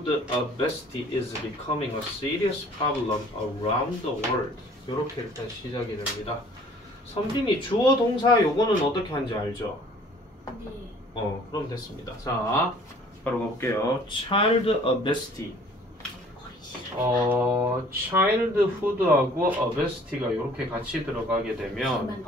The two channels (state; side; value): normal; both; correlation 0.53